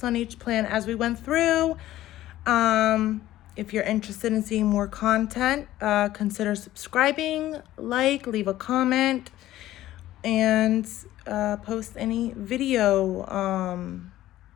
on each plant as we went through. If you're interested in seeing more content, consider subscribing, leave a comment, and post any video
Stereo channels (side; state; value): right; quieter; 14.5 dB